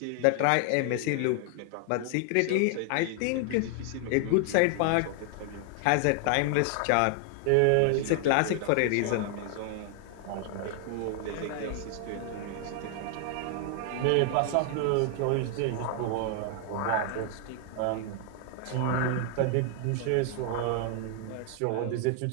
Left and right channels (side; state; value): both; different; correlation 0.00